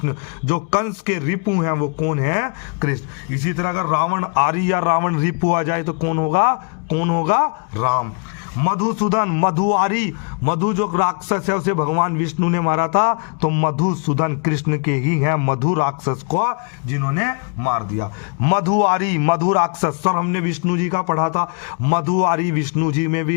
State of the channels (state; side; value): quieter; right; 37.1 dB